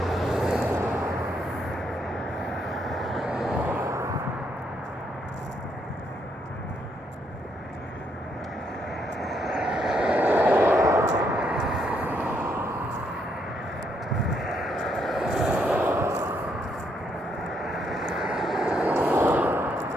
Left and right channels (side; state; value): both; normal; correlation 0.74